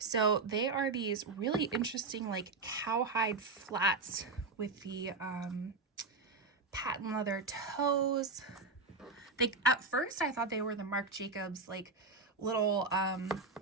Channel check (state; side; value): quieter; left; 3.9 dB